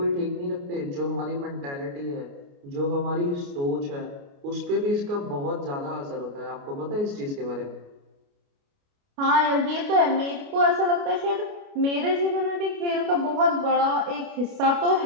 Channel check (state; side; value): late; left; 29 ms